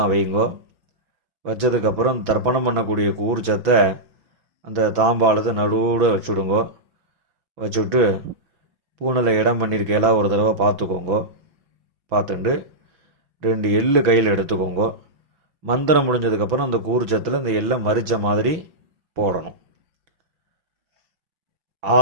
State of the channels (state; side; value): late; left; 6.1 ms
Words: வைங்கோ. வச்சதுக்கப்புறம் தர்ப்பணம் பண்ணக்கூடிய கூர்ச்சத்தை அந்த தாம்பாளத்தை நடுவில் வச்சுடுங்கோ. வச்சுட்டு பூனில் இடம் பண்ணியிருக்கையெல்லாம் ஒரு தடவை பார்த்துக்கோங்கோ. பார்த்துட்டு 2 எள்ளு கையில் எடுத்துக்கோங்கோ. மந்திரம் முடிஞ்சதுக்கப்புறம் அந்த கூர்ச்சத்தில் அந்த எள்ளை மறித்த மாதிரி போடணும்.